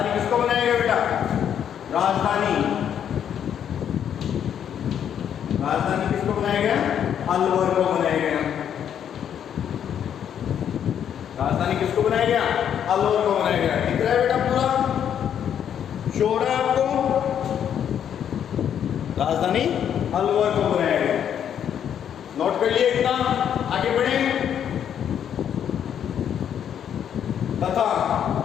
किसको बनाया गया बेटा? राजधानी किसको बनाया गया? अलवर को बनाया गया। राजधानी किसको बनाया गया? अलवर को बनाया गया। दिख रहा है बेटा पूरा चौड़ा आपको? राजधानी अलवर को बनाया गया। नोट कर लिए इतना, आगे बढ़े। तथा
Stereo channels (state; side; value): quieter; right; 9.1 dB